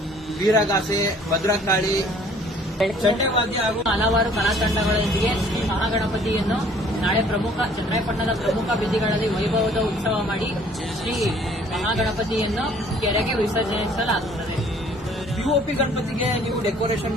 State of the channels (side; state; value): both; normal; correlation 0.56